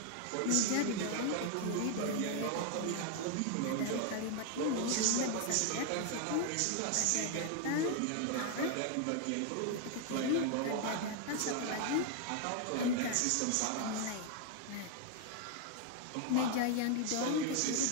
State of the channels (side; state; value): both; different; correlation 0.00